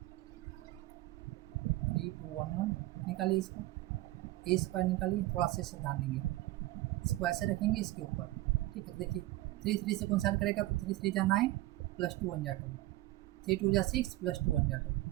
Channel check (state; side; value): quieter; left; 17.5 dB